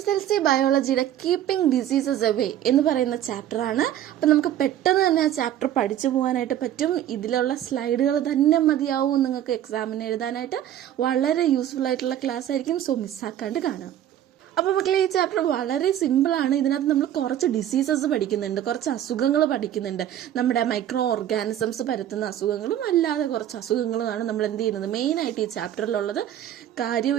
ബയോളജിയുടെ കീപ്പിംഗ് ഡിസീസസ് അവേ എന്ന് പറയുന്ന ചാപ്റ്റർ ആണ്. അപ്പൊ നമുക്ക് പെട്ടെന്ന് തന്നെ ആ ചാപ്റ്റർ പഠിച്ചു പോകാനായിട്ട് പറ്റും. ഇതിലുള്ള സ്ലൈഡുകൾ തന്നെ മതിയാവും നിങ്ങൾക്ക് എക്സാമിന് എഴുതാനായിട്ട്. വളരെ യൂസ്ഫുൾ ആയിട്ടുള്ള ക്ലാസ് ആയിരിക്കും. സോ മിസ്സാക്കാണ്ട് കാണാം. അപ്പൊ മക്കളെ, ഈ ചാപ്റ്റർ വളരെ സിമ്പിൾ ആണ്. ഇതിനകത്ത് നമ്മൾ കുറച്ച് ഡിസീസസ് പഠിക്കുന്നുണ്ട്, കുറച്ച് അസുഖങ്ങൾ പഠിക്കുന്നുണ്ട്. നമ്മുടെ മൈക്രോ ഓർഗാനിസംസ് പരത്തുന്ന അസുഖങ്ങളും അല്ലാതെ കുറച്ച് അസുഖങ്ങളുമാണ് നമ്മൾ എന്ത് ചെയ്യുന്നത് മെയിൻ ആയിട്ട് ഈ ചാപ്റ്ററിലുള്ളത്. കാര്യം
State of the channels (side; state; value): left; quieter; 11.3 dB